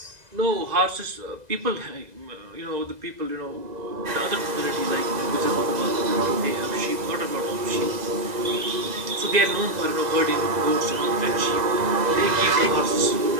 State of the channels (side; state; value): left; late; 2.0 ms